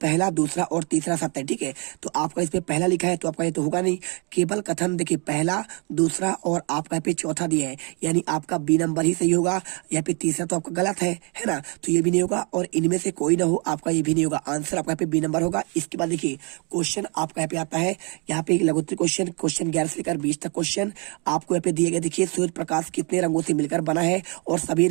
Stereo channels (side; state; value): left; quieter; 33.4 dB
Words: दूसरा और तीसरा सत्य है, ठीक है। तो आपका इसमें पहला लिखा है तो आपका ये तो होगा नहीं। केवल कथन देखिए पहला दूसरा और आपका यहाँ पे चौथा दिया है, यानी आपका बी नंबर ही सही होगा, यहाँ पे तीसरा तो आपका गलत है ना, तो ये भी नहीं होगा। और इनमें से कोई ना हो आपका ये भी नहीं होगा, आंसर आपका यहाँ पे बी नंबर होगा। इसके बाद देखिए क्वेश्चन आपका यहाँ पे आता है, यहाँ पे एक लघुत्तरी क्वेश्चन 11 से लेकर 20 तक क्वेश्चन आपको यहाँ पे दिए गए। देखिए सूर्य प्रकाश कितने रंगों से मिलकर बना है और सभी